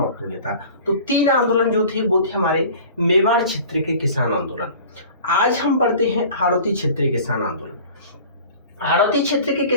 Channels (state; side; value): inverted; both; correlation -0.43